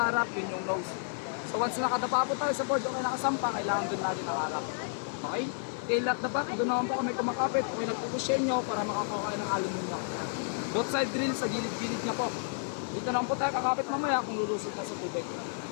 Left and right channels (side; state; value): right; silent; digital silence